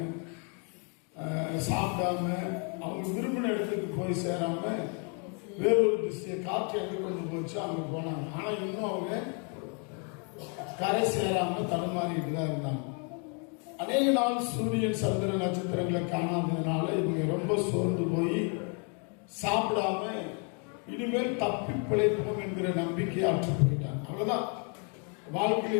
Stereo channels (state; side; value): quieter; right; 37.9 dB